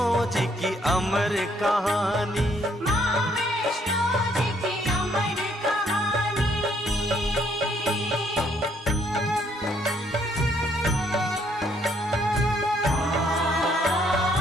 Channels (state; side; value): normal; both; correlation 0.68